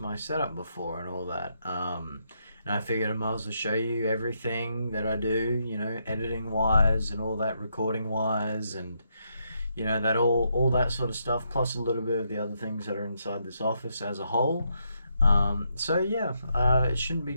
setup before and all that. And I figured I might as well show you everything that I do, editing wise and all that, recording wise, and that all that sort of stuff, plus a little bit of the other things that are inside this office as a whole. It shouldn't be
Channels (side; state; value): both; inverted; correlation -0.78